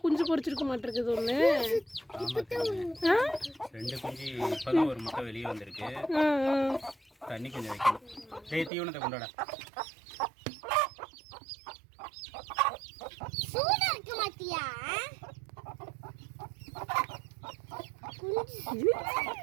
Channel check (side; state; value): left; drops out; at 8.7 s